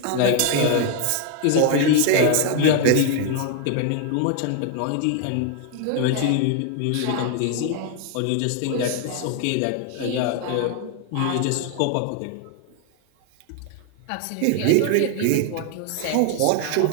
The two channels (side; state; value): both; different; correlation 0.01